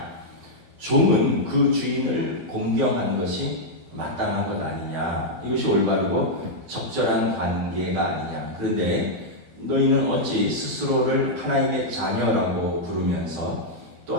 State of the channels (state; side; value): late; left; 12 ms